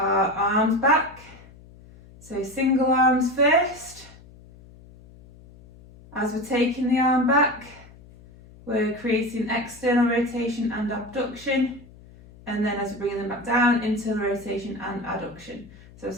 arms back. So single arms first. As we're taking the arm back, we're creating external rotation and abduction, and then as we're bringing them back down, internal rotation and adduction. So as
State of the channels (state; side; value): noise; left; hum, 22 dB below the sound